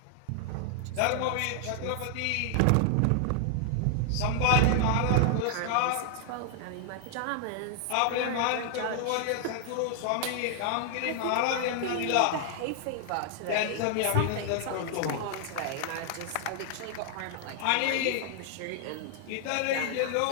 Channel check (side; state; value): both; different; correlation 0.00